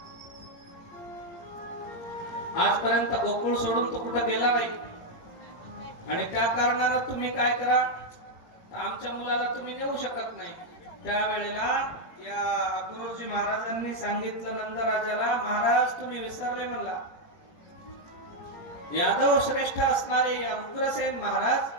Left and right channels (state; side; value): late; right; 18 ms